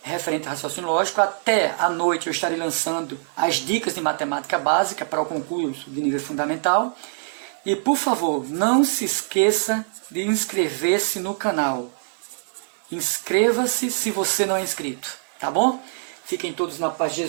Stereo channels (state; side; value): silent; left; 63 dB below the other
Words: referente a raciocínio lógico. Até à noite eu estarei lançando as dicas de matemática básica para o concurso de nível fundamental. E, por favor, não se esqueça de inscrever-se no canal. Inscreva-se se você não é inscrito, tá bom? Fiquem todos na paz de